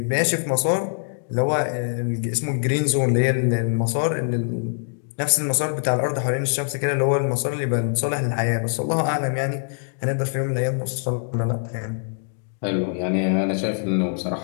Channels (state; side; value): silent; right; digital silence